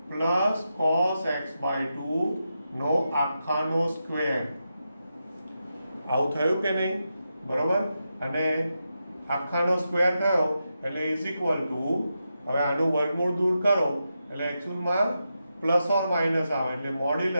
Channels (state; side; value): inverted; both; correlation -0.88